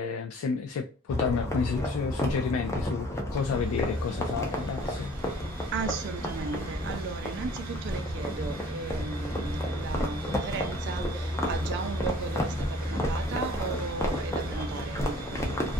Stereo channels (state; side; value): normal; both; correlation 0.53